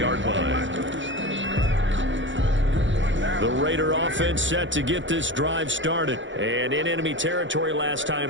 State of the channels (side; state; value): left; late; 0.55 ms